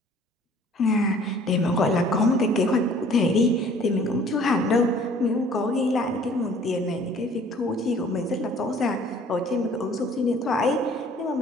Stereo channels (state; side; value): normal; both; correlation 0.54